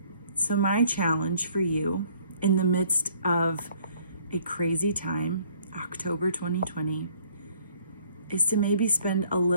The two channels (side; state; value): both; inverted; correlation -0.60